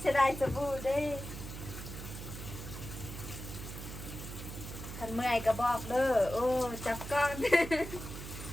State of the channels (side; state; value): right; noise; hum, 9 dB below the sound